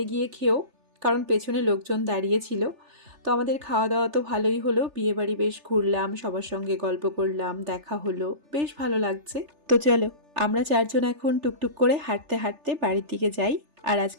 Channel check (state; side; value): late; left; 3.4 ms